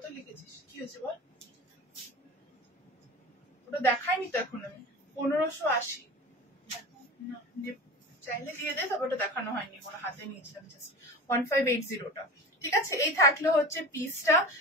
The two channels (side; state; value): both; normal; correlation 0.32